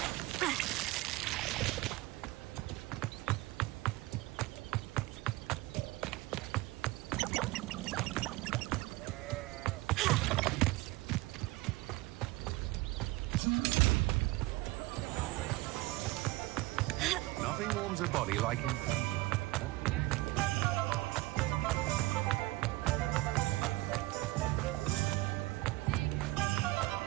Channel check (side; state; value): left; quieter; 19.9 dB